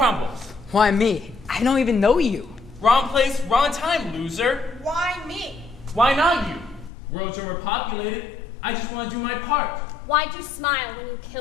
Why me? I don't even know you. Wrong place, wrong time, loser. Why me? Why not you? Worlds are overpopulated. I just want to do my part. Why'd you smile when you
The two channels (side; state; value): right; drops out; at 6.9 s